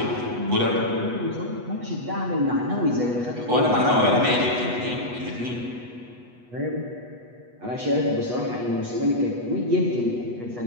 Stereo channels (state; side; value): late; left; 8.2 ms